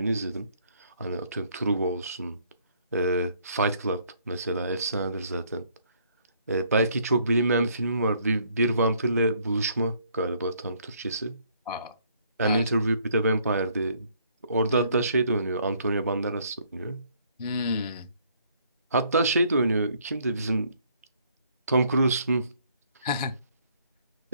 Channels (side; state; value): both; inverted; correlation -0.65